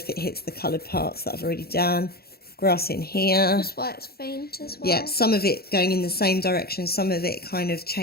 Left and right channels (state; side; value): late; right; 0.45 ms